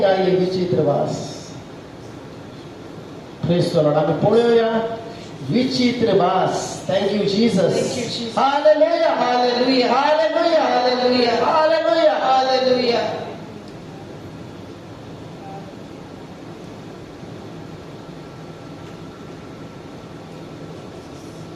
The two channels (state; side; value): identical; both; correlation 1.00